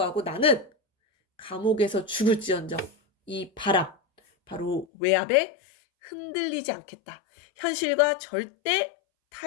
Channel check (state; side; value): drops out; right; at 4.9 s